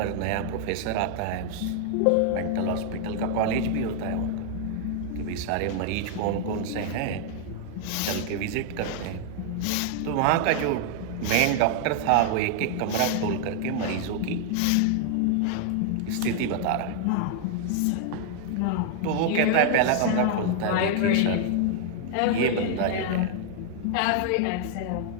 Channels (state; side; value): different; both; correlation 0.00